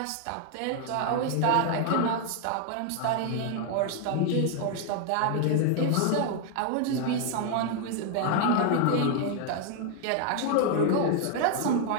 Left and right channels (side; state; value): both; different; correlation 0.00